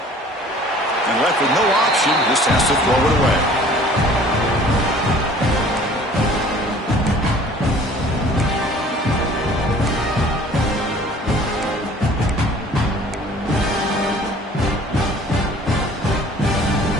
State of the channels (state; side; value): normal; both; correlation 0.51